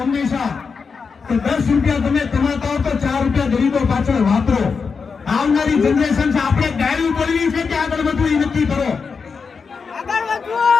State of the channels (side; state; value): right; quieter; 5.3 dB